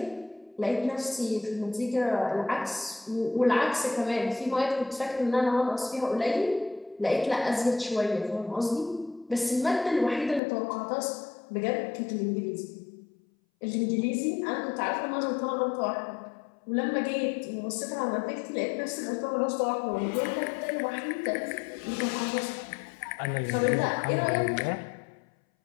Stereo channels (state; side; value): drops out; right; at 10.4 s